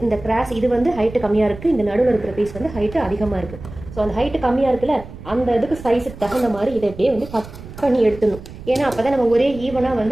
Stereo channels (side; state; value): right; noise; rumble, 15 dB below the sound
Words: இந்த கிராஸ் இது வந்து ஹைட்டு கம்மியாக இருக்குது, இந்த நடுவில் இருக்கிற பீஸ் வந்து ஹைட்டு அதிகமாக இருக்குது. ஸோ அந்த ஹைட்டு கம்மியாக இருக்குல்ல, அந்த இதுக்கு சைஸுக்கு தகுந்த மாதிரி இதை இப்படியே வந்து கட் பண்ணி எடுத்துடணும். ஏன்னா அப்போ தான் நம்ம ஒரே ஈவனாக